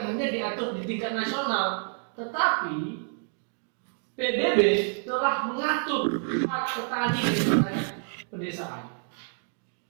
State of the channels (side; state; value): left; silent; 58 dB below the other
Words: diatur di tingkat nasional, tetapi PBB telah mengatur hak petani di pedesaan.